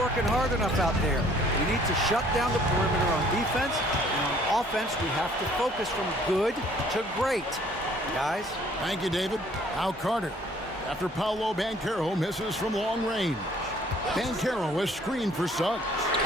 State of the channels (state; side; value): normal; both; correlation 0.58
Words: hard enough out there. We need to shut down the perimeter on defense, and on offense, we have to focus from good to great. Guys? Thank you, David. Now Carter, after Paolo Banchero misses from long range. Banchero is screened for Suggs.